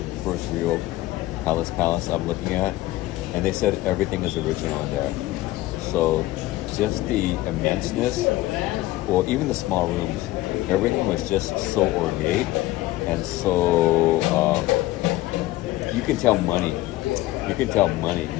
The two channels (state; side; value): quieter; right; 17.2 dB